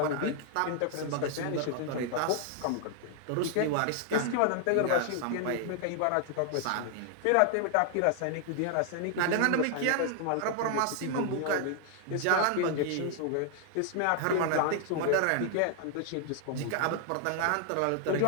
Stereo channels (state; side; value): different; both; correlation 0.00